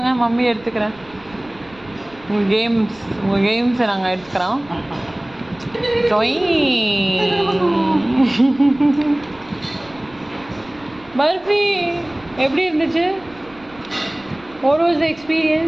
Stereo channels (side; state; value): right; noise; rumble, 25 dB below the sound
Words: மம்மி எடுத்துக்கிறேன். உங்கள் கேம்ஸை நாங்கள் எடுத்துக்கிறோம். பர்ஃபி எப்படி இருந்துச்சு? What was the